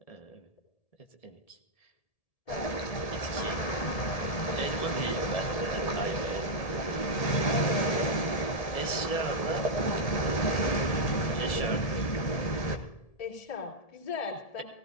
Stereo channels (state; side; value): late; right; 1.7 ms